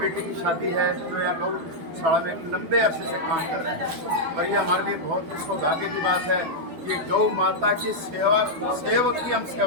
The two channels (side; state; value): left; late; 12 ms